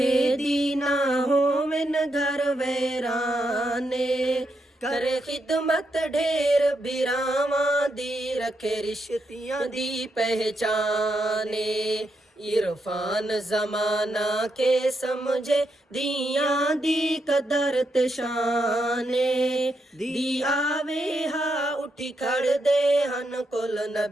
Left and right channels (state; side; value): normal; both; correlation 0.82